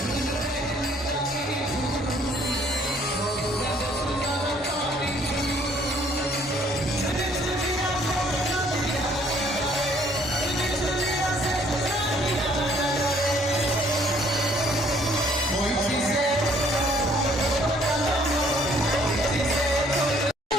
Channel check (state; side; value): normal; both; correlation 0.62